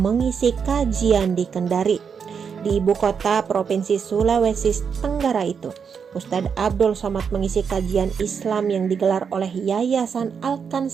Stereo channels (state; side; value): quieter; left; 6.5 dB